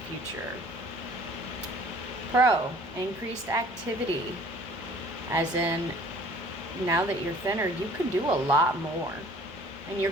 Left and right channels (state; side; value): normal; both; correlation 0.51